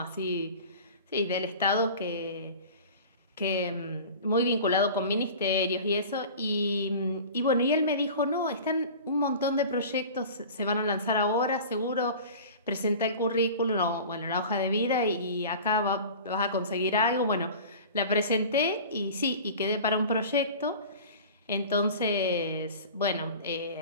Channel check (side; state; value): both; inverted; correlation -0.38